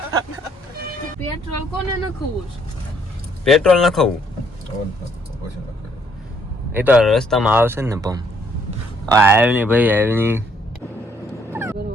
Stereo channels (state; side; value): normal; both; correlation 0.67